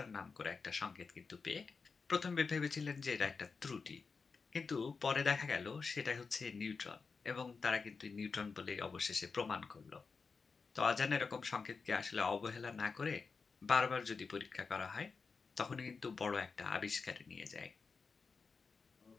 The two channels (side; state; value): right; quieter; 4.9 dB